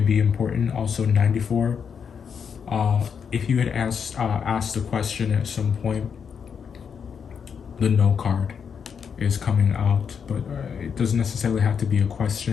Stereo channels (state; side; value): quieter; right; 6.8 dB